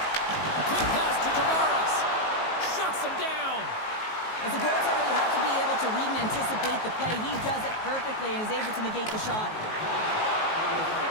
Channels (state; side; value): late; right; 19 ms